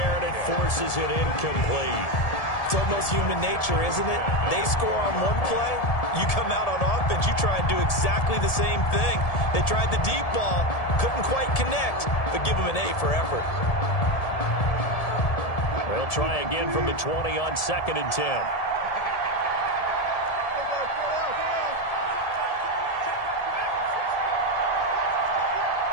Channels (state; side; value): late; right; 1.7 ms